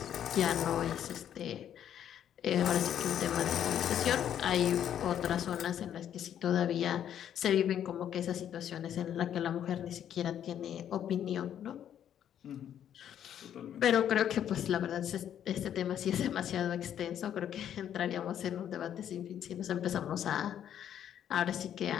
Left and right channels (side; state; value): right; quieter; 9.9 dB